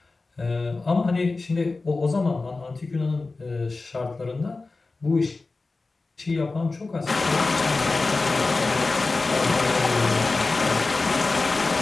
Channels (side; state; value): right; quieter; 3.6 dB